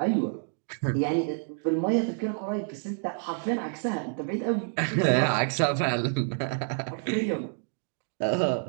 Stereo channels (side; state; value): left; silent; 56 dB below the other